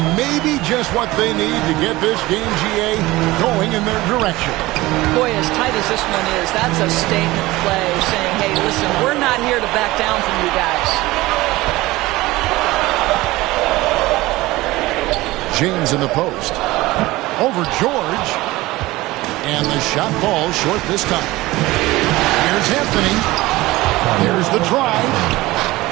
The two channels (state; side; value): quieter; left; 19.1 dB